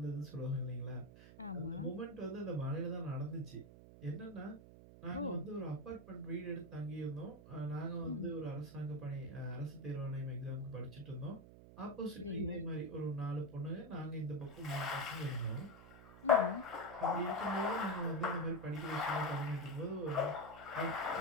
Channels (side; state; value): right; noise; hum, 17 dB below the sound